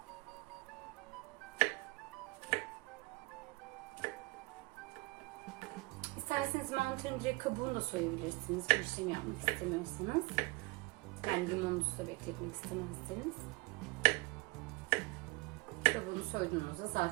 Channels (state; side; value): quieter; left; 24.2 dB